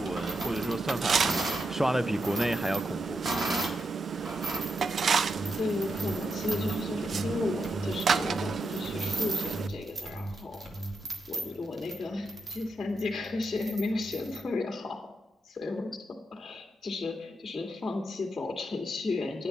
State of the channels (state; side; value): normal; both; correlation 0.83